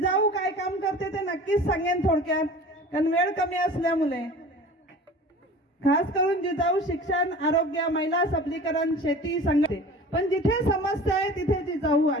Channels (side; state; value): both; normal; correlation 0.41